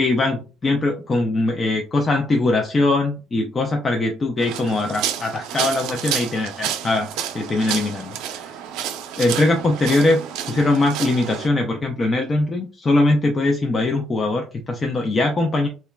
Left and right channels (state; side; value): normal; both; correlation 0.78